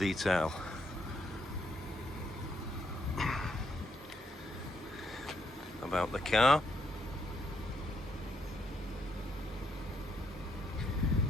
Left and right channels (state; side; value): normal; both; correlation 0.75